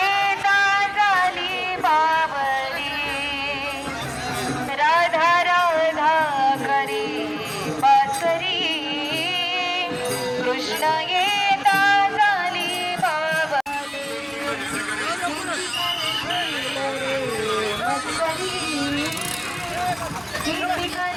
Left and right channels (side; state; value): both; identical; correlation 1.00